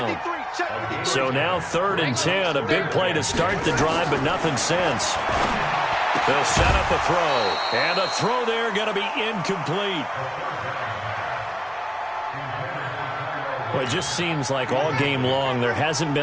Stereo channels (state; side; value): identical; both; correlation 1.00